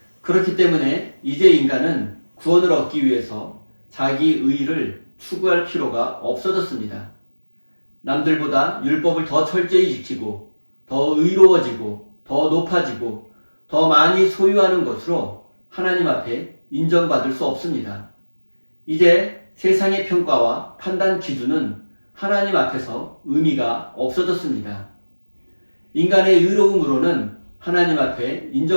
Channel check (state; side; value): inverted; both; correlation -1.00